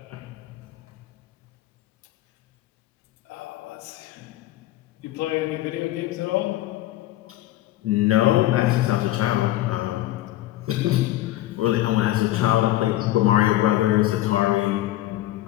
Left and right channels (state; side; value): quieter; right; 15.3 dB